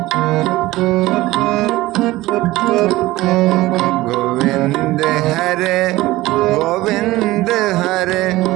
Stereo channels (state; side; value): quieter; left; 18.0 dB